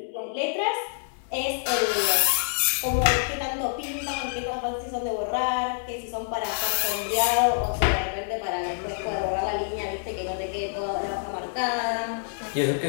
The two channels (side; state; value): right; silent; 60 dB below the other